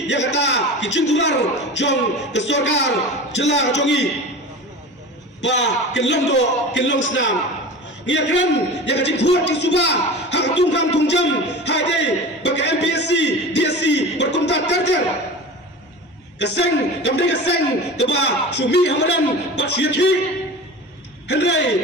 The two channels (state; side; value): normal; both; correlation 0.33